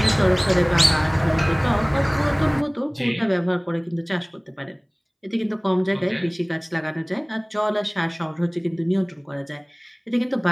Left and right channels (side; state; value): both; identical; correlation 1.00